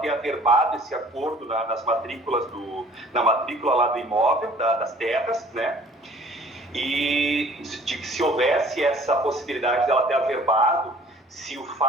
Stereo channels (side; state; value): both; normal; correlation 0.53